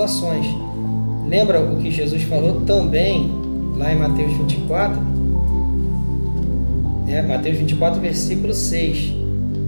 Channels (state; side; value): inverted; both; correlation -1.00